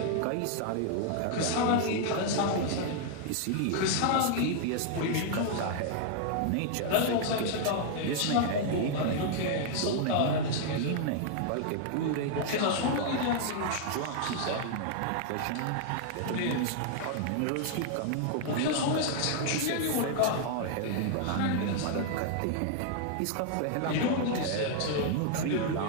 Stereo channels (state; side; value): different; both; correlation 0.00